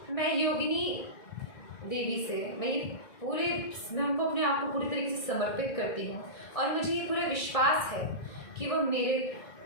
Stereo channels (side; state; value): right; late; 1.7 ms